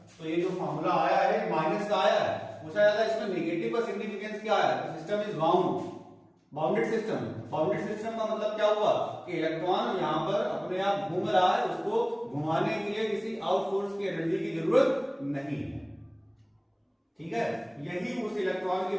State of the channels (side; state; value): both; identical; correlation 1.00